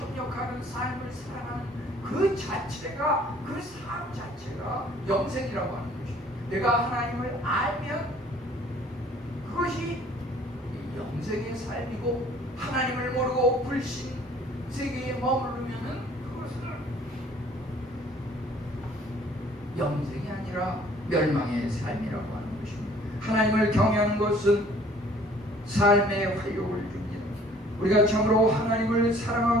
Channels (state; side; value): normal; both; correlation 0.55